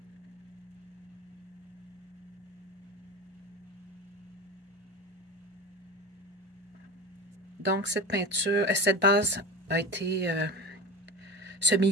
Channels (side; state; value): both; normal; correlation 0.28